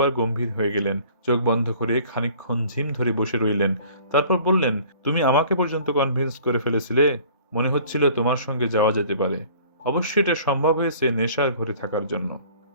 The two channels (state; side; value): inverted; both; correlation -0.51